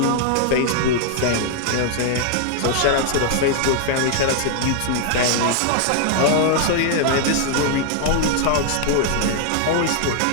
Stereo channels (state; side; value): different; both; correlation 0.00